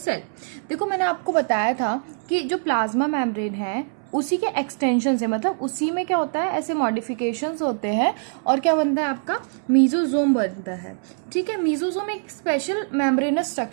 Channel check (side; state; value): left; silent; 63 dB below the other